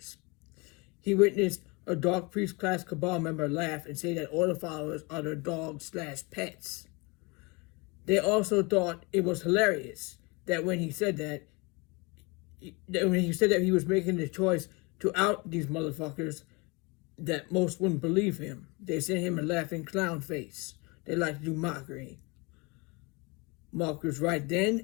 He witnessed a Dark Priest class cabal member laugh and say that order followers are their dogs/pets. They also thought it was hilarious that when he said that he was making the choice to out these motherfuckers, that most wouldn't believe him. They sent him a laughing clown face. They like to do mockery. Mark was right then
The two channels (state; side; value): quieter; right; 27.9 dB